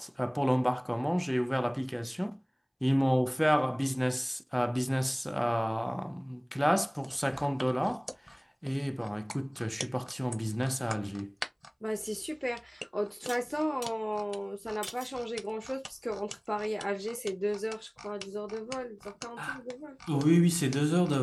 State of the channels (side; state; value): both; identical; correlation 1.00